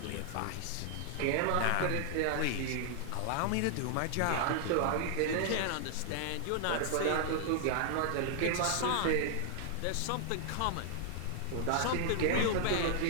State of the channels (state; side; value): different; both; correlation 0.00